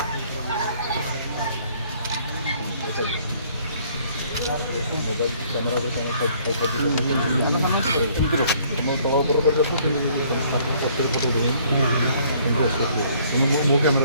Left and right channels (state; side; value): inverted; both; correlation -0.61